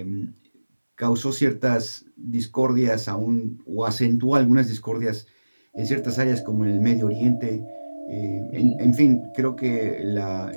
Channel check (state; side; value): inverted; both; correlation -1.00